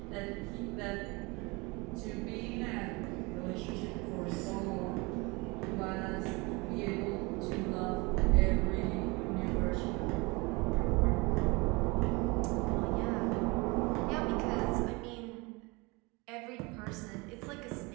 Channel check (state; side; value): quieter; left; 26.2 dB